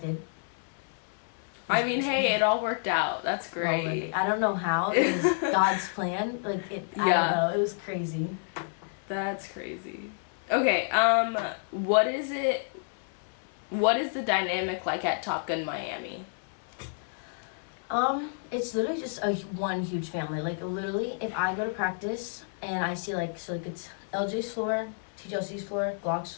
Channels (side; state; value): right; silent; 58 dB below the other